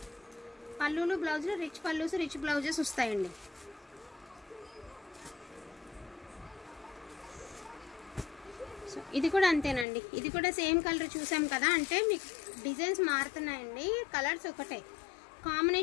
పళ్ళులు బ్లౌజులు రిచ్ పళ్ళుస్ రిచ్ బ్లౌజెస్ వస్తాయండి. సో ఇది కూడా అంతేనండి. ఇది కూడా సేమ్ కలర్ చూసాం కదా, అంటే మీకు డిజైన్స్ మారుతున్నాయండి. కలర్స్ ఒకటే,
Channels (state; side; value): drops out; right; at 9.9 s